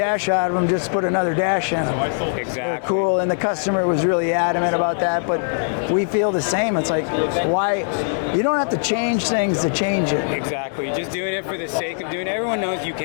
out of them. Just put another dash in them. Exactly. They're cool, and the customer was really adamant about that. But we feel the same. It's like why. You don't have to change things to change it. Exactly. Just doing it for the sake of doing it. Everyone knows you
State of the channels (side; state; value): right; silent; 65 dB below the other